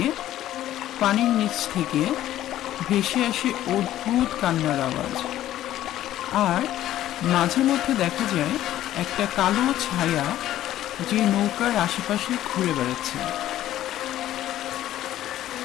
পানির নিচ থেকে ভেসে আসে অদ্ভুত কান্নার আওয়াজ, আর মাঝে মধ্যে দেখা যায় একটা কালো ছায়া যে নৌকার আশেপাশে ঘুরে বেড়াচ্ছে।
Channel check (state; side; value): quieter; right; 13.2 dB